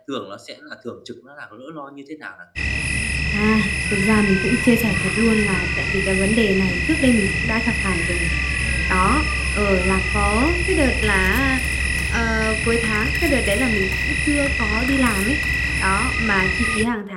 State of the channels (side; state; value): both; identical; correlation 1.00